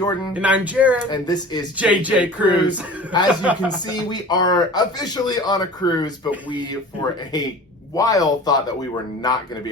And I'm Jared. And this is JJ Cruise. As you can see, we are officially on a cruise, but we, for a while, thought that we were not going to be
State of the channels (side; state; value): both; normal; correlation 0.40